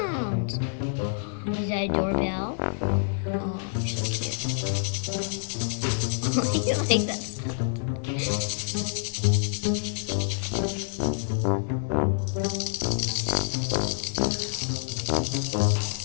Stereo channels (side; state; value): right; silent; digital silence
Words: Is that a doorbell? Oh, so cute. Oh, you like that sound?